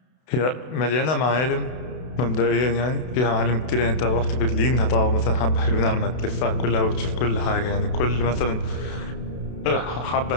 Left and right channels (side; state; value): right; late; 32 ms